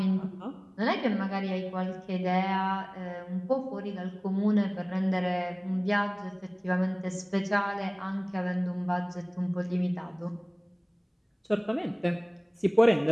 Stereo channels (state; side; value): identical; both; correlation 1.00